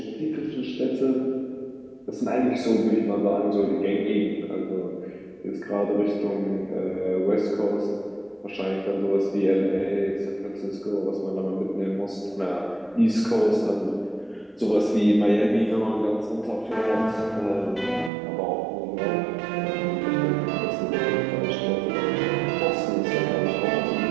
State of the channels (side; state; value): left; drops out; at 18.1 s